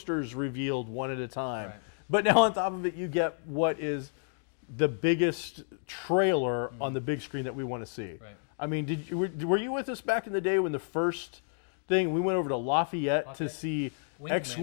revealed one at a time. Right. But now on top of it, you get what is the biggest trailer on the big screen that we want to see. Right. I mean, were you with us back in the day when the first thing we went over to Lafayette to see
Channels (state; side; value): silent; right; digital silence